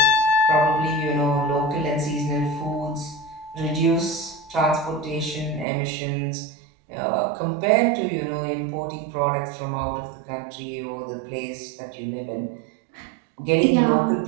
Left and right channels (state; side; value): drops out; left; at 5.7 s